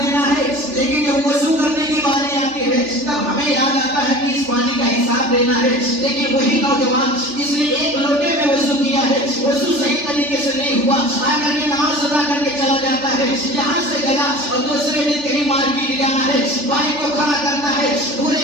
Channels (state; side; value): late; left; 3.4 ms